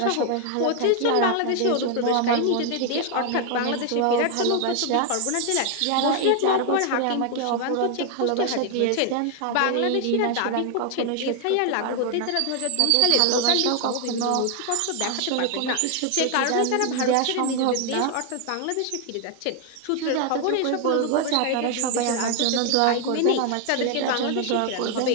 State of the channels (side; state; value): both; different; correlation 0.00